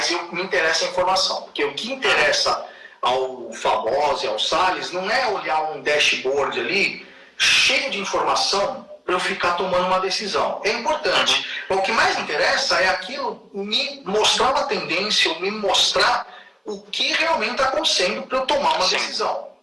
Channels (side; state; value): both; identical; correlation 1.00